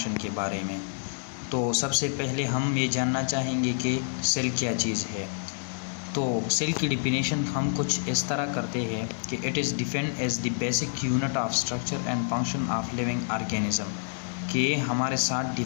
के बारे में। तो सबसे पहले हम ये जानना चाहेंगे कि सेल क्या चीज़ है। तो सेल की डिफिनेशन हम कुछ इस तरह करते हैं कि it is defined as the basic unit of structure and function of living organism, कि हमारे साथ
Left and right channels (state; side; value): silent; right; digital silence